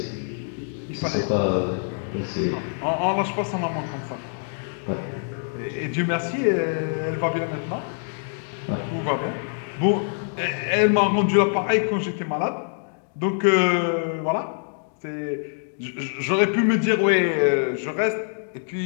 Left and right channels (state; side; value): silent; right; digital silence